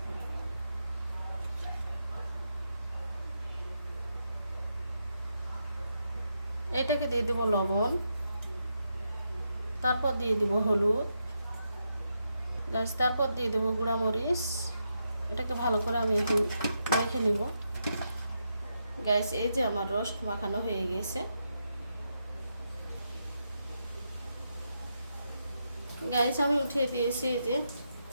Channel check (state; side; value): inverted; both; correlation -0.83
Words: এটাকে দিয়ে দেব লবণ, তারপর দিয়ে দেব হলুদ গাইস, তারপর দিয়ে দেব গুঁড়া মরিচ। এটাকে ভালো করে আমি এখন মেখে নিব গাইস। এই যে আমার রোস্ট মাখানো হয়ে গেছে গাইস। আমি উঠিয়ে দিয়েছি। এই যে